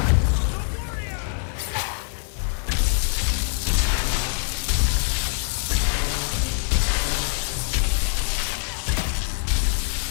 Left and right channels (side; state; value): right; silent; digital silence